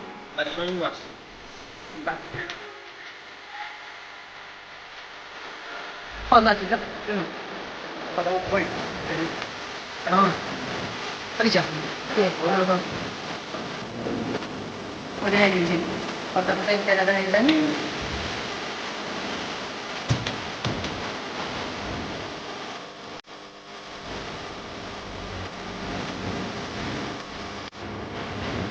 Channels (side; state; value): both; identical; correlation 1.00